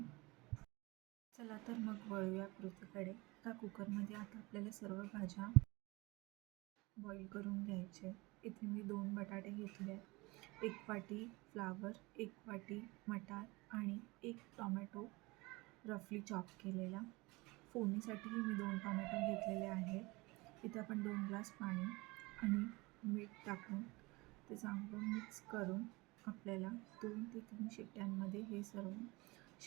चला तर मग वळूया कृतीकडे. आता कुकरमध्ये आता आपल्याला सर्व भाज्या बॉईल करून घ्यायचे. इथे मी 2 बटाटे घेतले आहेत, 1 वाटी फ्लावर, 1 वाटी मटार आणि 1 टोमॅटो रफली चॉप केलेला. फोडणीसाठीही मी 2 टोमॅटो घेतलेले आहेत. इथे आपण 2 ग्लास पाणी आणि मीठ टाकून ते चांगलं मिक्स करून आपल्याला 2 ते 3 शिट्ट्यांमध्ये हे सर्व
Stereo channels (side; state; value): left; quieter; 23.5 dB